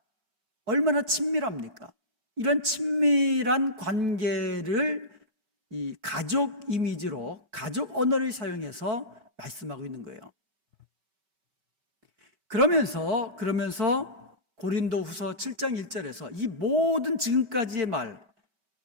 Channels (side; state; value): left; late; 5.2 ms